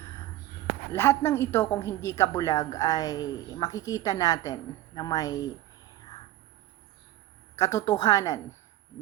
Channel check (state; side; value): quieter; left; 15.2 dB